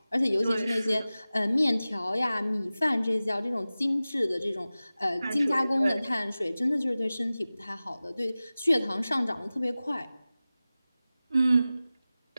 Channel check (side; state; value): both; inverted; correlation -0.97